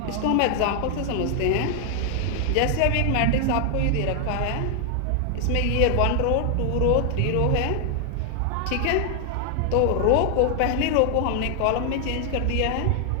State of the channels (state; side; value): different; both; correlation 0.00